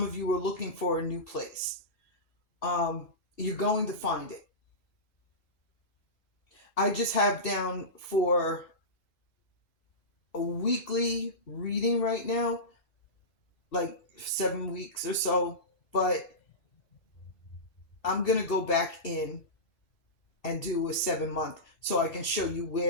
of you are looking for a new place. You're going to find it. I just have down for a weekly reading right now, like 7 weeks or so, but I'm going to go back in and do a 7-month so I can show you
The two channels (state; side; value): late; right; 2.6 ms